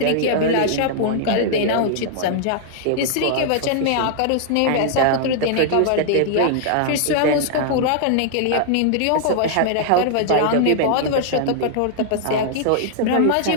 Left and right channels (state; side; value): different; both; correlation -0.01